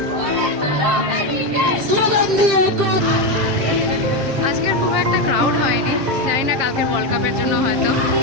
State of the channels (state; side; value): late; left; 7.5 ms